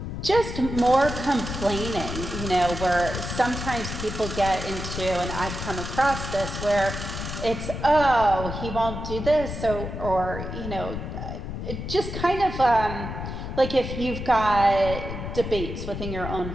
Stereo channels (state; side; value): noise; left; rumble, 6 dB below the sound